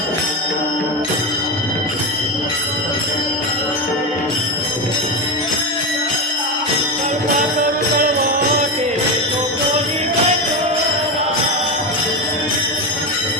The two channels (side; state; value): both; normal; correlation 0.16